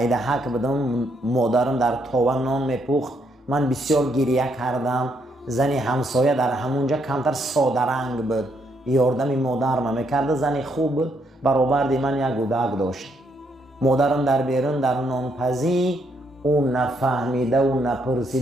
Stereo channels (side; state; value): both; normal; correlation 0.74